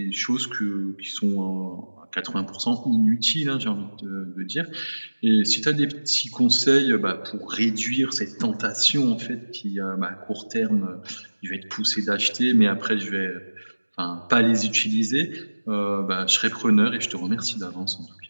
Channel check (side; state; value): both; inverted; correlation -1.00